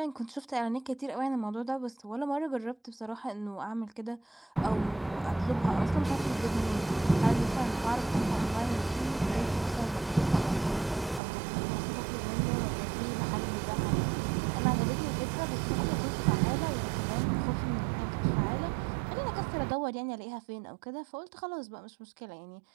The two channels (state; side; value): drops out; left; at 11.2 s